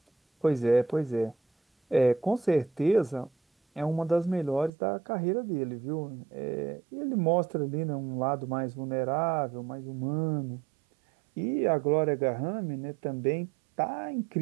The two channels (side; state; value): left; drops out; at 4.7 s